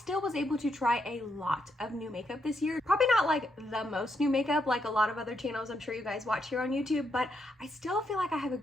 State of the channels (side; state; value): both; normal; correlation 0.79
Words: was able to try a lot of new makeup this year. Probably not like the most new makeup like a lot of other channels I'm sure you guys watch here on YouTube, but I still feel like I have a